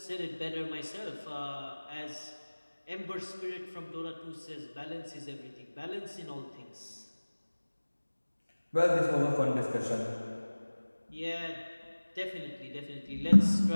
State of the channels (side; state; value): both; inverted; correlation -1.00